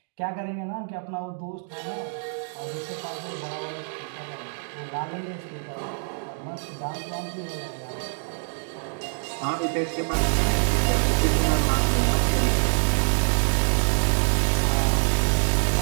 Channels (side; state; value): left; silent; digital silence